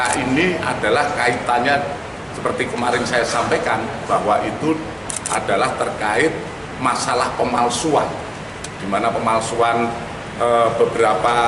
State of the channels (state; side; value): identical; both; correlation 1.00